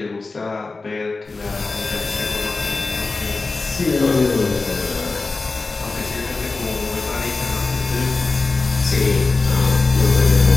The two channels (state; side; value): quieter; right; 3.8 dB